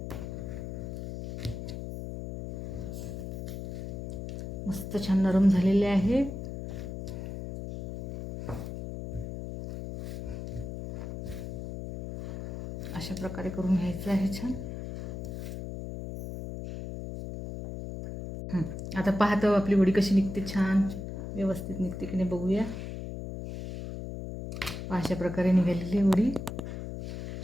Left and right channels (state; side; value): noise; left; hum, 7 dB below the sound